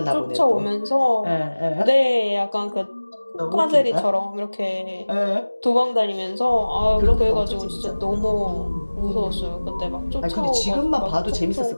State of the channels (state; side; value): inverted; both; correlation -1.00